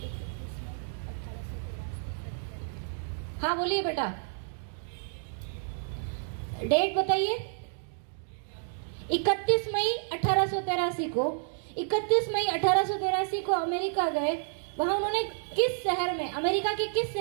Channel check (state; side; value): silent; left; digital silence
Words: हाँ बोलिए बेटा, डेट बताइए। 31 मई 1883 को 31 मई 1883 को अमेरिका गए। वहां उन्होंने किस शहर में, अमेरिका के किस